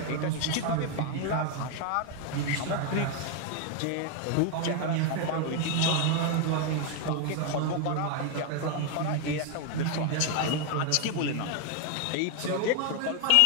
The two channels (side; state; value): both; different; correlation 0.01